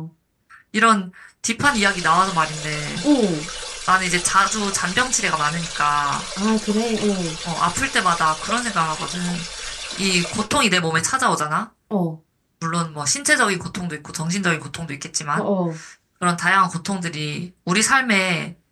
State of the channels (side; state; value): both; identical; correlation 1.00